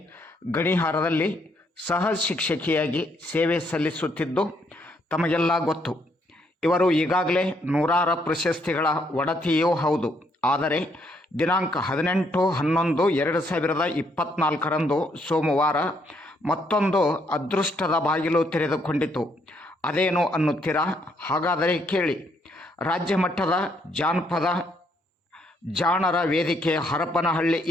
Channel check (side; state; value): both; normal; correlation 0.72